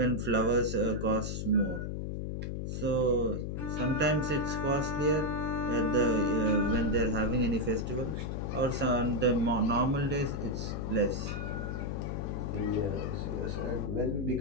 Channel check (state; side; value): noise; left; hum, 3 dB below the sound